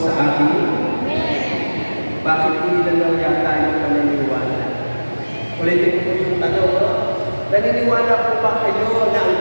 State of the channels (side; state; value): both; inverted; correlation -1.00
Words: atin? Bakit hindi lang yata yung paniniwala? Ulitin ko yung tanong, no? Naniniwala po ba kayo na ang